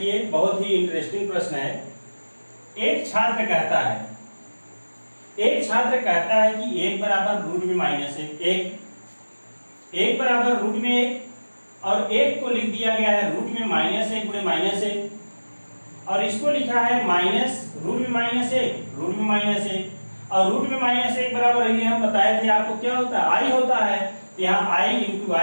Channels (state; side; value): inverted; both; correlation -1.00